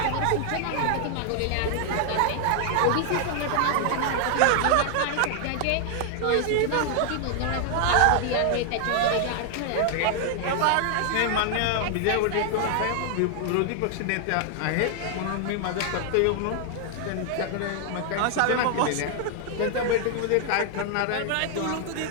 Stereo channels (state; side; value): different; both; correlation 0.00